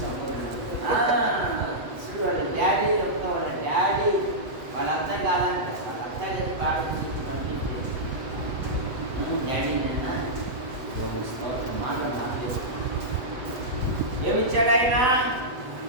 చూడు వాళ్ళ డాడీ చెప్తా, వాళ్ళ డాడీ వాళ్ళ అత్త కాదంట, వాళ్ళ అత్త కలిసి ప్రార్థన చేసి పంపించి డాడీ నిన్న మాట మాట్లాడు. ఏమిచ్చాడు ఆయన?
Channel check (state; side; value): late; left; 7.9 ms